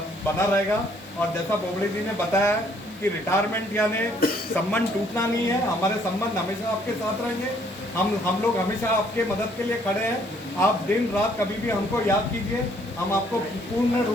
रहेगा। और जैसा बोबड़े जी ने बताया कि रिटायरमेंट यानी संबंध टूटना नहीं है, हमारे संबंध हमेशा आपके साथ रहेंगे। हम लोग हमेशा आपके मदद के लिए खड़े हैं। आप दिन रात कभी भी हमको याद कीजिए, हम आपको पूर्ण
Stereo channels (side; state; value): both; normal; correlation 0.65